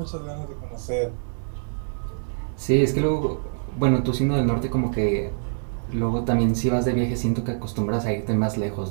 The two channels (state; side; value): silent; left; 59 dB below the other